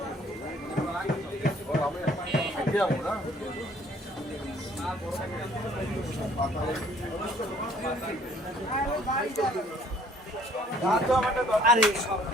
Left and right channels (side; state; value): both; normal; correlation 0.59